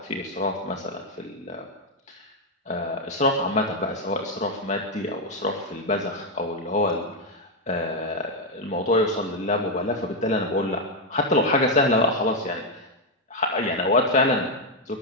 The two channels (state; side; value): normal; both; correlation 0.02